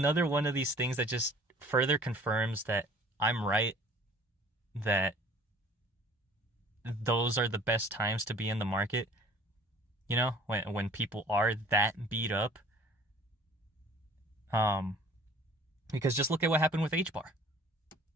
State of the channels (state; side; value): normal; both; correlation 0.50